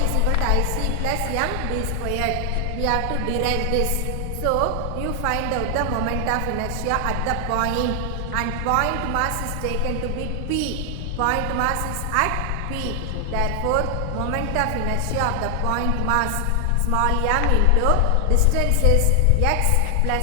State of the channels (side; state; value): both; different; correlation 0.00